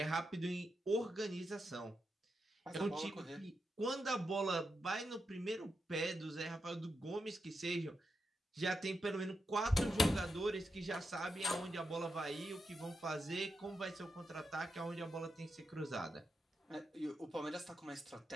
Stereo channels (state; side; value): normal; both; correlation 0.86